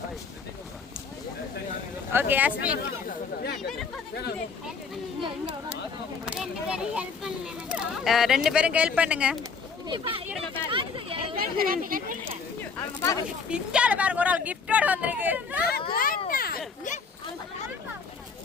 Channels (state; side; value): quieter; right; 5.3 dB